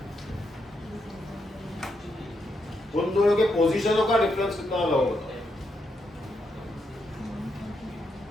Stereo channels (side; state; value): both; normal; correlation 0.80